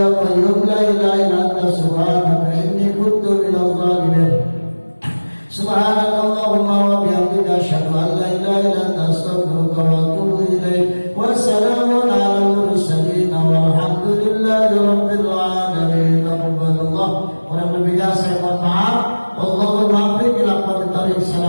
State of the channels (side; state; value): both; inverted; correlation -1.00